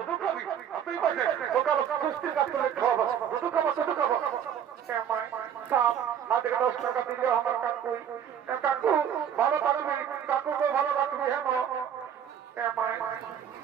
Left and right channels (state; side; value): quieter; left; 8.9 dB